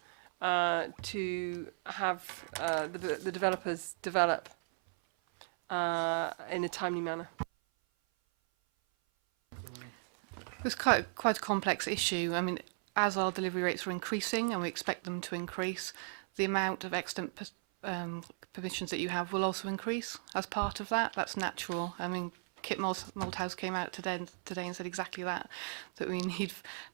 to have the developers develop in a timely manner? It's quite a complex issue. I mean, as our delivery rates are increasing, and we expect them to increase, the amount of extant permissions that you have will also increase as part of that. That's natural. I mean, Kit Malthouse came out today and said exactly that we need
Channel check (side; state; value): left; silent; 54 dB below the other